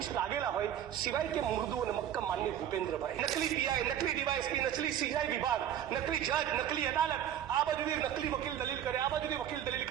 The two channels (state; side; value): quieter; left; 10.4 dB